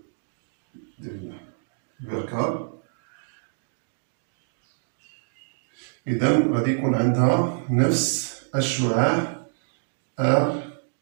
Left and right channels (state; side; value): silent; left; digital silence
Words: ديال البركار. إذا غادي يكون عندها نفس الشعاع آر،